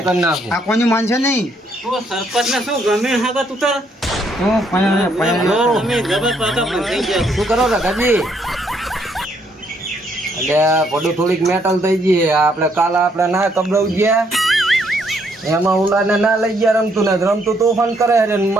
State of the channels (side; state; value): both; normal; correlation 0.71